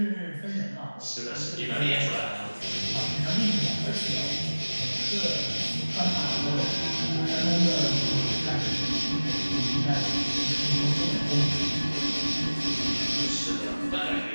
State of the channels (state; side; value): inverted; both; correlation -1.00